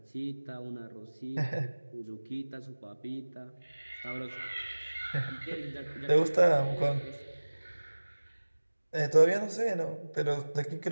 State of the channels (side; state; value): both; inverted; correlation -1.00